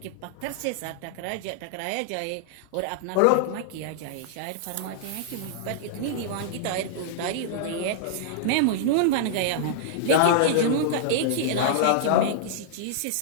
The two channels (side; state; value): both; different; correlation -0.01